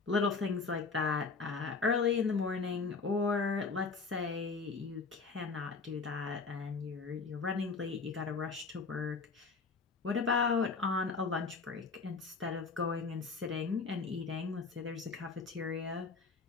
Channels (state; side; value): quieter; right; 4.6 dB